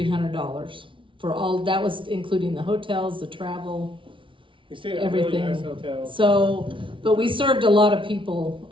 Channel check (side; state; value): left; late; 0.25 ms